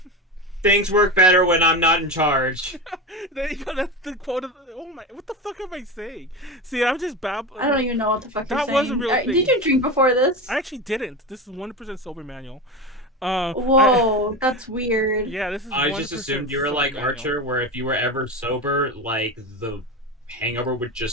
Things work better when I'm not in charge. There you go. That's the quote. Oh my! What the fuck am I saying? See, I'm just babbling. I don't even know what the fuck you're saying. That was a real thing. Did you drink before this? I actually didn't. This is 100% sober, Manuel. Whoa, that's weird. Yeah, this is. I just assumed you were like Archer, where if you were ever sober, like the hangover would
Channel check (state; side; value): normal; both; correlation 0.23